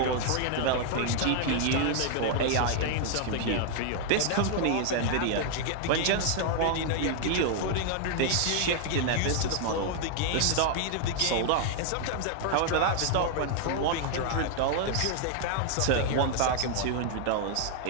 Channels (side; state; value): both; different; correlation 0.00